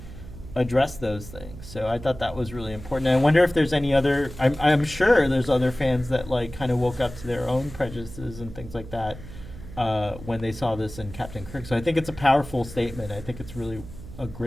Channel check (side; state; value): right; noise; hum, 14 dB below the sound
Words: address those things. So I thought that was really important. And I wonder if there's any other. I'm sure there's other fans that like kind of woke up to their own prejudices and things like that when they saw this in Captain Kirk. So I think it's a powerful statement. I think it's really a